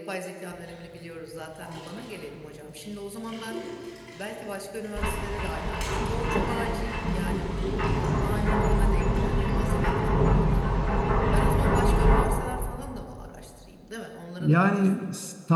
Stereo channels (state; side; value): identical; both; correlation 1.00